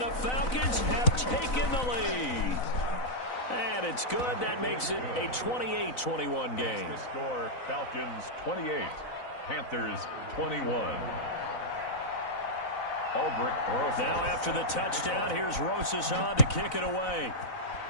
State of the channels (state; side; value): late; right; 4.0 ms